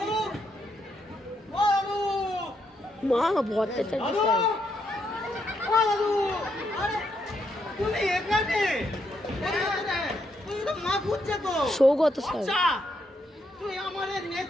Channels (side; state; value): both; normal; correlation 0.78